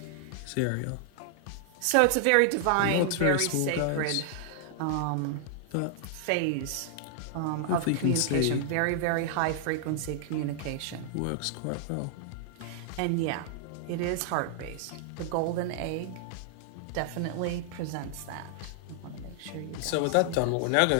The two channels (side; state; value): both; different; correlation 0.00